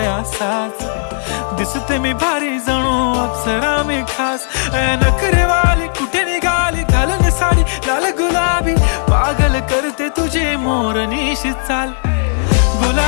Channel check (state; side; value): silent; right; 60 dB below the other